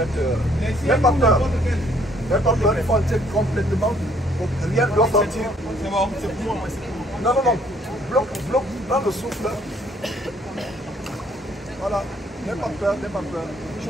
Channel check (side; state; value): both; normal; correlation 0.64